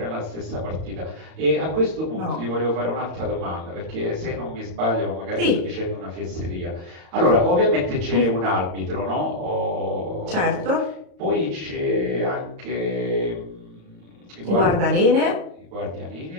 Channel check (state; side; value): late; left; 35 ms